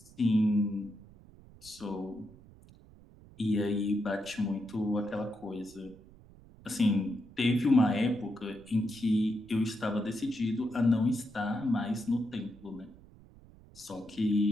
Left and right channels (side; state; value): right; noise; rumble, 23 dB below the sound